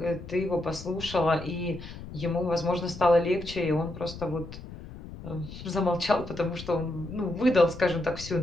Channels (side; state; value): left; noise; rumble, 13 dB below the sound